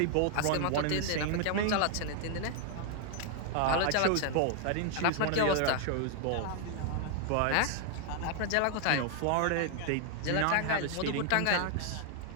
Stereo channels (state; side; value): different; both; correlation 0.00